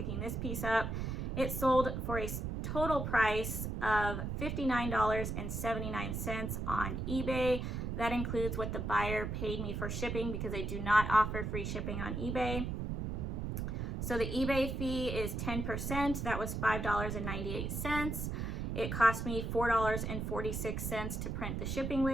this piece up. It sold for a total price of $59.79 on eBay. That includes what the buyer paid me for shipping, because I do not offer free shipping on eBay. So the eBay fee is 10%. That was $5.98. It cost me $4.46 to print the shipping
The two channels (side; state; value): right; noise; rumble, 3 dB below the sound